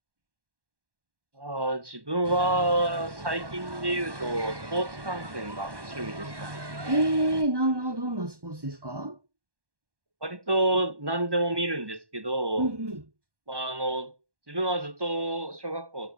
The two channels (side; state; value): left; late; 1.1 ms